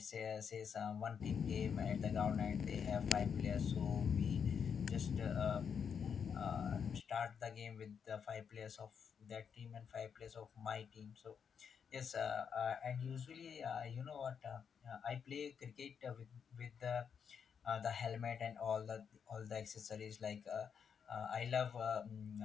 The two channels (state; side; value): quieter; right; 7.0 dB